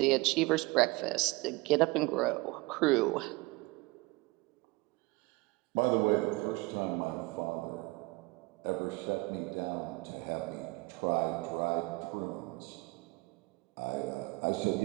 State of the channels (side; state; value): left; quieter; 23.7 dB